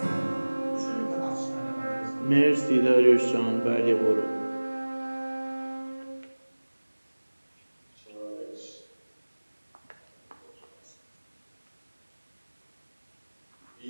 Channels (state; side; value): inverted; both; correlation -1.00